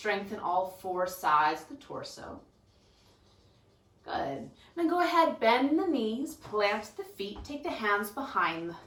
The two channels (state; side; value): identical; both; correlation 1.00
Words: in all four sides of the torso. Good. Then go ahead, bend the knees, plant the feet, take the hands behind the